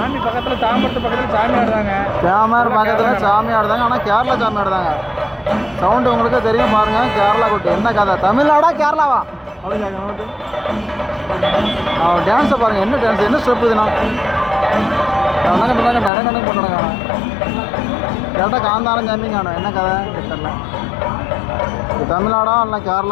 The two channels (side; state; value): right; drops out; at 16.1 s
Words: பக்கத்தில் தாம்பரத்து பக்கத்தில் சாமி ஆடுறாங்க. கேமர் பக்கத்தில் சாமி ஆடுதாங்க. ஆனால் கேரளா சாமி ஆடுதாங்க. சவுண்டு உங்களுக்கு தெரியும் பாருங்கள். கேரளா கொட்டு என்ன கதை? தமிழ்நாடா கேரளாவா அப்படின்னு கேட்க. அவன் டான்ஸை பாருங்கள். என்ன டான்ஸ், என்ன ஸ்டெப் இதுனா? நடக்கணும் பண்ணுறாங்க. கேட்டால் காந்தாரம் சாமி காணும். என்ன கதை தெரியல. இது தமிழ்நாடா இல்லை